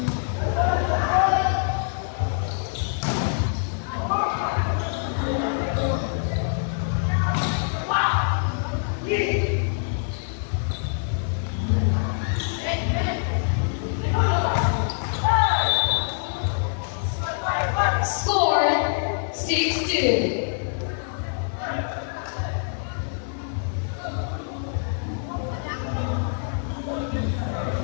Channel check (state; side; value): silent; right; digital silence